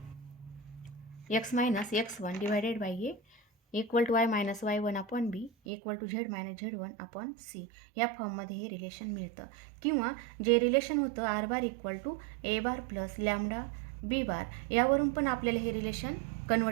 X minus x1 divided by a equal to Y minus y1 upon B equal to Z minus z1 upon c. या फॉर्ममध्ये हे रिलेशन मिळतं. किंवा जे रिलेशन होतं R bar equal to A bar plus lambda B bar, यावरून पण आपल्याला हे रिलेशन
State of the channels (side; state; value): left; drops out; at 5.5 s